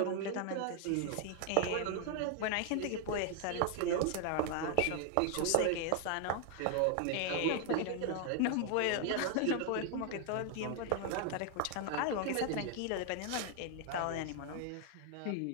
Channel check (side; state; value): both; different; correlation 0.00